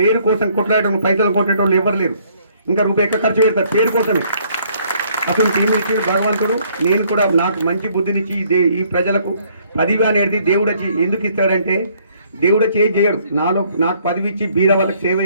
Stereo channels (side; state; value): both; inverted; correlation -0.65